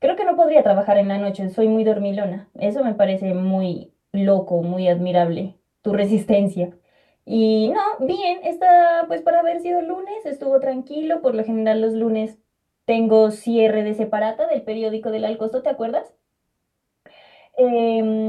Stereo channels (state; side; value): identical; both; correlation 1.00